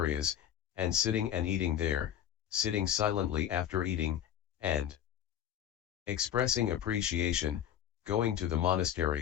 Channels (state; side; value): quieter; right; 10.3 dB